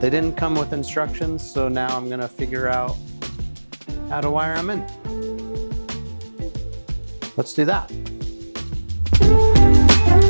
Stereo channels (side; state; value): both; inverted; correlation -1.00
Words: didn't come with instructions, so now I'm gonna figure out how to wire them in. Let's do that.